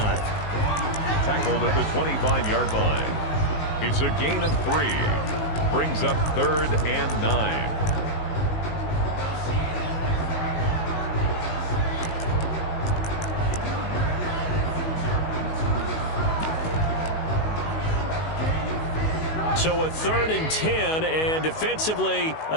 Tackled at the 25-yard line. It's a gain of 3. Brings up 3rd and 9. So a 3rd and 10, and defensively,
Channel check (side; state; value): right; late; 19 ms